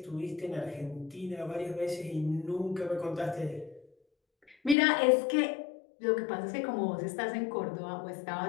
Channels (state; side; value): drops out; right; at 4.8 s